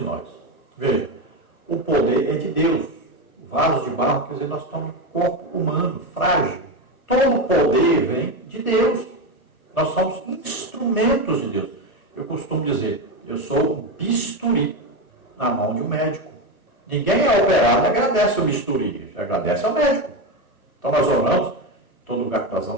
nós. Veja, o poder é de Deus. O vaso de barro, quer dizer, nós estamos um corpo humano, frágil. Todo o poder vem de Deus. Nós somos instrumentos de Deus. Eu costumo dizer, eu sou um bisturi na mão de um médico. Ninguém é operado e agradece o bisturi, agradece ao médico. Então nós oramos, todo lugar que nós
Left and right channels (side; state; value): right; late; 1.2 ms